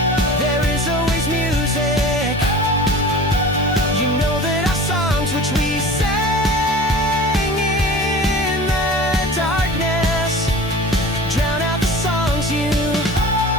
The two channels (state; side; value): normal; both; correlation 0.38